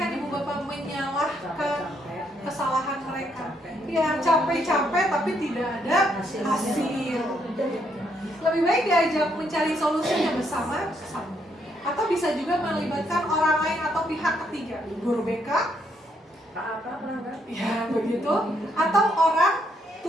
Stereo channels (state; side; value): normal; both; correlation 0.74